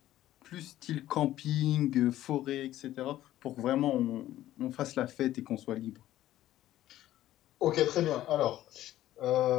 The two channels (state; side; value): quieter; right; 13.9 dB